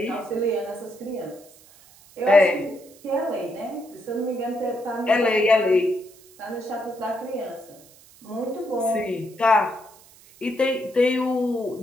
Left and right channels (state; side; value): noise; right; hiss, 25 dB below the sound